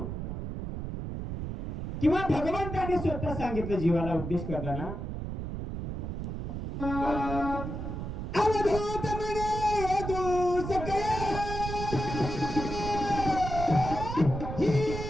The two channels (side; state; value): right; noise; rumble, 5 dB below the sound